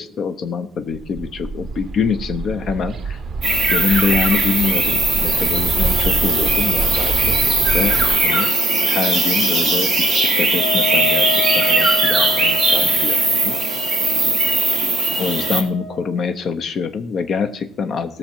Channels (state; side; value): normal; both; correlation 0.65